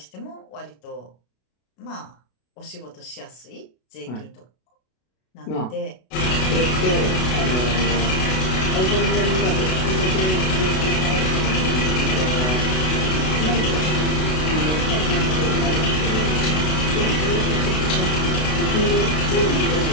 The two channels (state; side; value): late; right; 32 ms